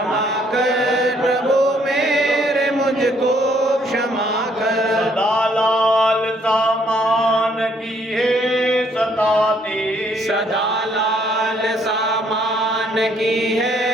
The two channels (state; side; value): normal; both; correlation 0.66